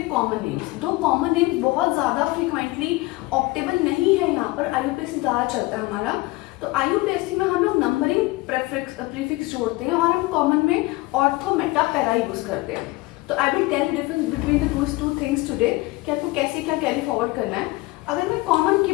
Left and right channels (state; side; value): quieter; right; 21.3 dB